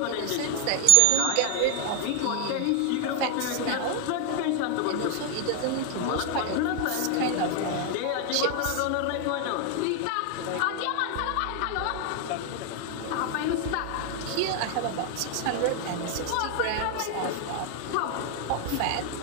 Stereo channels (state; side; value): different; both; correlation 0.00